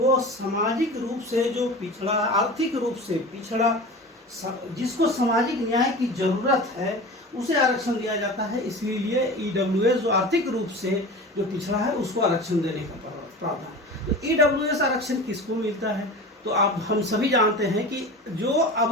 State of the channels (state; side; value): normal; both; correlation 0.33